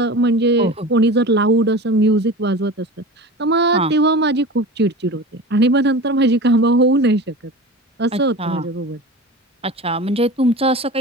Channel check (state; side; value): normal; both; correlation 0.33